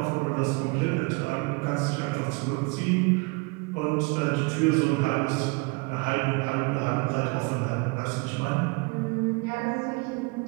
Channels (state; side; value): quieter; left; 29.3 dB